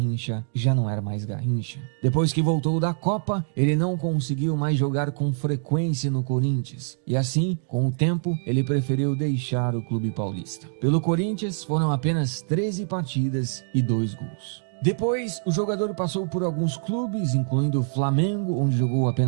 já não era mais Garrincha. Depois que voltou da Copa, ele não conseguiu mais jogar com frequência no Corinthians. E assim, com o tempo, ele preferiu deixar o clube paulista. Pelo Corinthians, foram apenas 13 partidas e 2 gols. Depois, o jogador passou por alguns clubes, incluindo o Flamengo, onde jogou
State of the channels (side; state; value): left; silent; 62 dB below the other